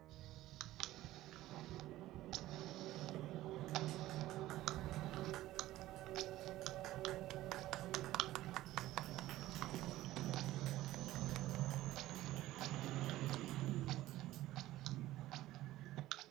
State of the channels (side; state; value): left; quieter; 15.7 dB